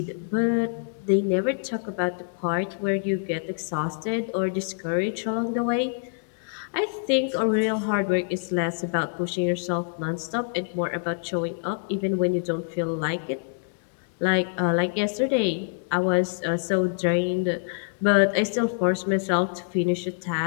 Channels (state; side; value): silent; right; digital silence